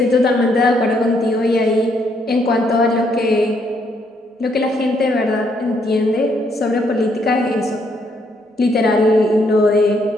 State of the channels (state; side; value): normal; both; correlation 0.72